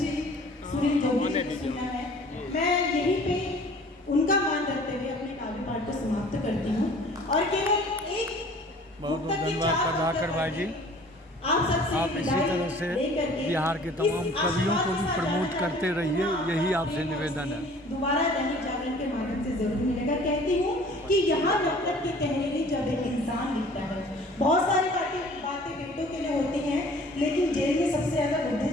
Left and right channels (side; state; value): both; normal; correlation 0.50